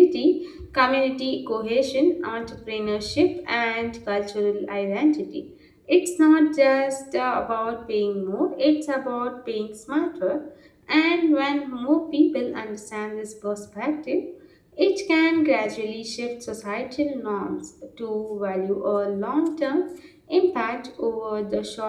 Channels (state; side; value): identical; both; correlation 1.00